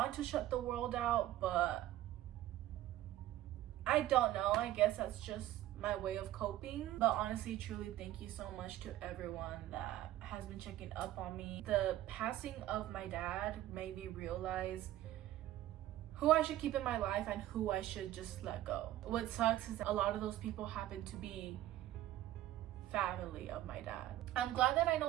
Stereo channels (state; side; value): quieter; left; 14.2 dB